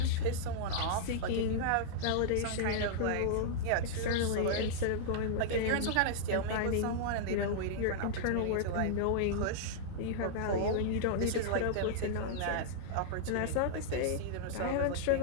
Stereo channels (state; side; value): different; both; correlation -0.02